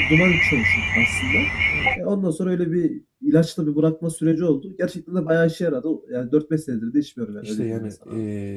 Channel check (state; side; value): identical; both; correlation 1.00